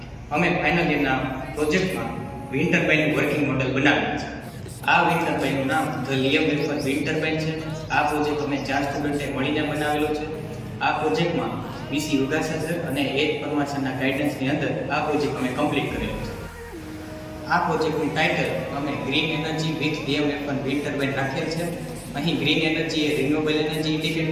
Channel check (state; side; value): identical; both; correlation 1.00